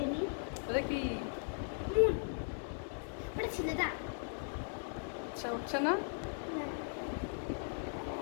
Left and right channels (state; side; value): silent; right; 52 dB below the other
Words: নিই। এটা কি? মুন, ওটা ছেলেটা আচ্ছা, উঠছে না? না,